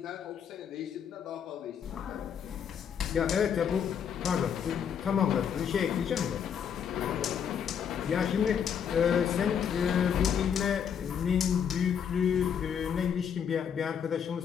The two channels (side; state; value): right; quieter; 7.9 dB